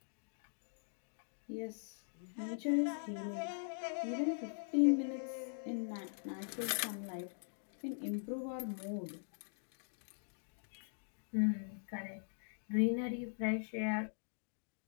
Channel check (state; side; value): silent; right; digital silence